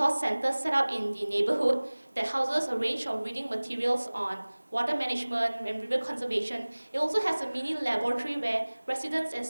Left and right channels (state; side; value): inverted; both; correlation -1.00